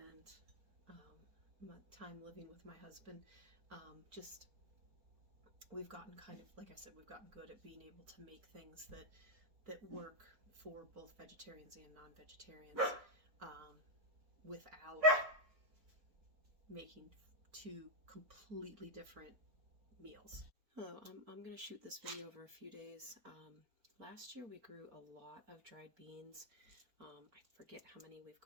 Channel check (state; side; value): late; left; 4.4 ms